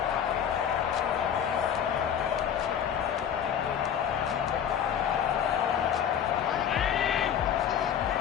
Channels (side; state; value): right; quieter; 8.8 dB